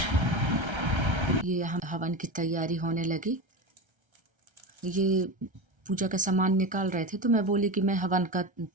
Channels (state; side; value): late; left; 1.3 ms